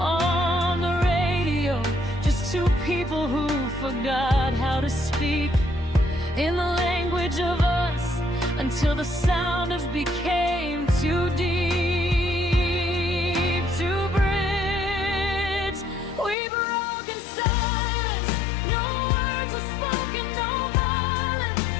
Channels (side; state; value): right; drops out; at 16.4 s